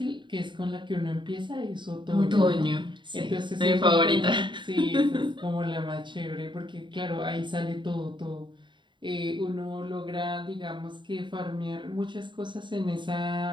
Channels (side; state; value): left; late; 0.23 ms